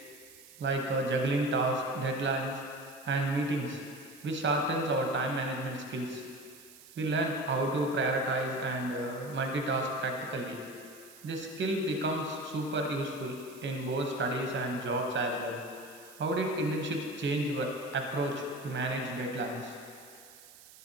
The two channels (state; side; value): noise; right; hiss, 20 dB below the sound